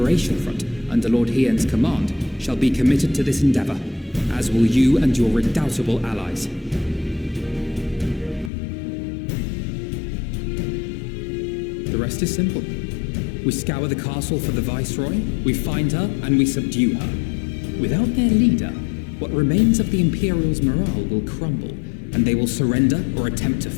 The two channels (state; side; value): drops out; right; at 8.5 s